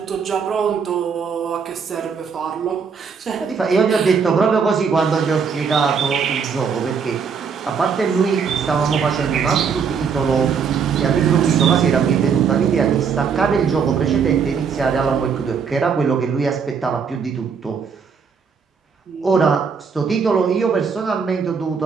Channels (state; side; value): quieter; left; 6.1 dB